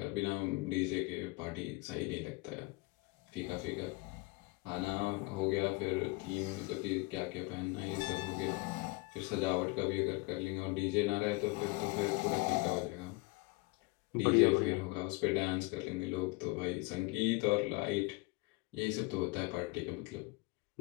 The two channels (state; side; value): quieter; right; 24.7 dB